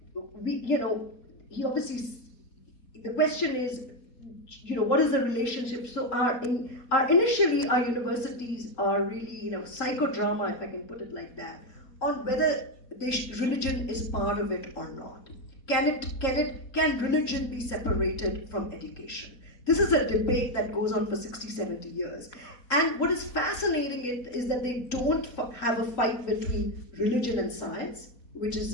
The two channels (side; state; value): right; late; 3.8 ms